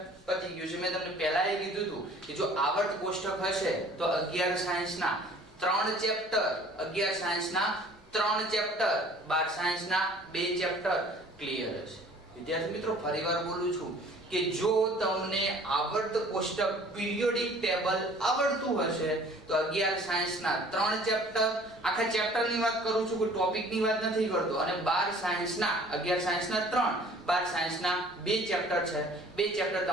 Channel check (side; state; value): both; normal; correlation 0.51